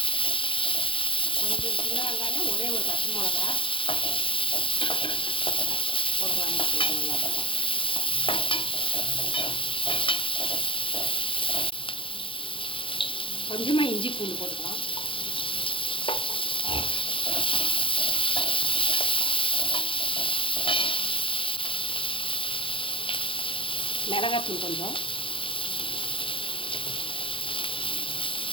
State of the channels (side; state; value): right; late; 0.25 ms